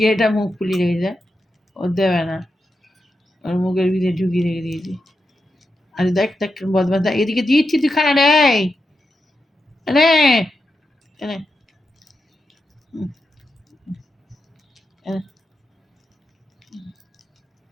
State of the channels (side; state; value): both; normal; correlation 0.87